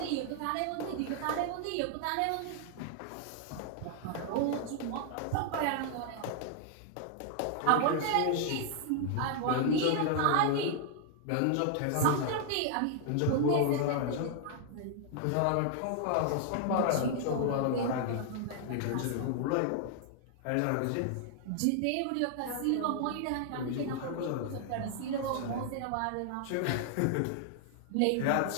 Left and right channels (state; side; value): different; both; correlation 0.00